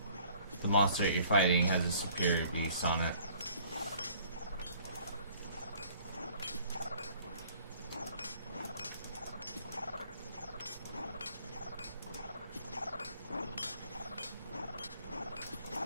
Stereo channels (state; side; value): inverted; both; correlation -0.57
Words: The monster that you're fighting has a superior beast on it.